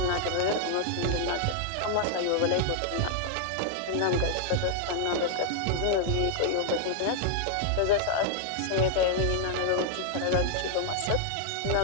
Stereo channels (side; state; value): both; different; correlation 0.00